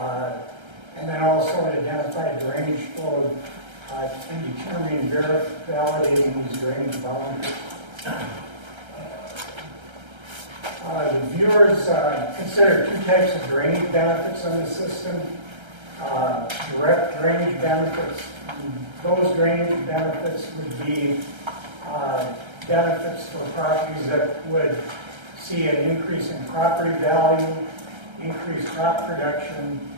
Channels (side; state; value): left; late; 1.3 ms